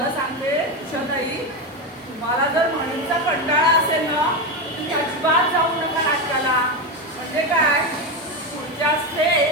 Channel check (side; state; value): both; normal; correlation 0.14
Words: सांगते उषाताई तुम्हाला जर म्हणींचा कंटाळा असेल ना तुम्ही अजिबात जाऊ नका नाटकाला. म्हणजे काय पुढच्या